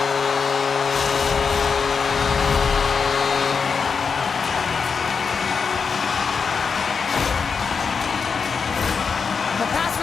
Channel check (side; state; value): right; quieter; 5.6 dB